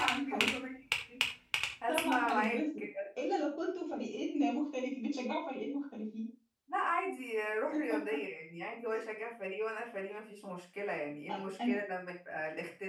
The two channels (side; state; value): both; identical; correlation 1.00